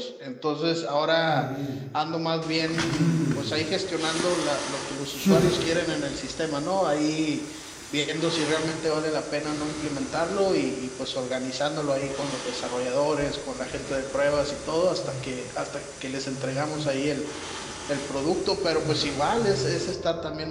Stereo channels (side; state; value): both; identical; correlation 1.00